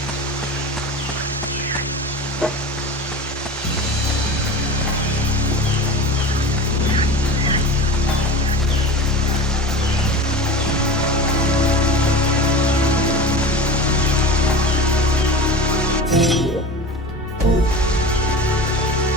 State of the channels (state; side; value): normal; both; correlation 0.31